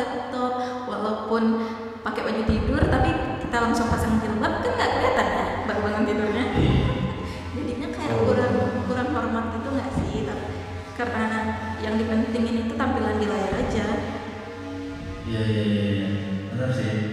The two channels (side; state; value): both; identical; correlation 1.00